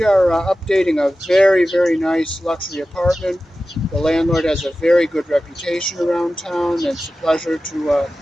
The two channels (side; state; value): both; normal; correlation 0.95